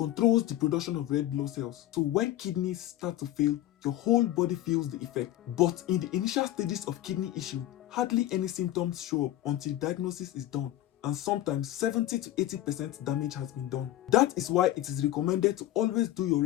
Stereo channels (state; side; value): quieter; right; 14.0 dB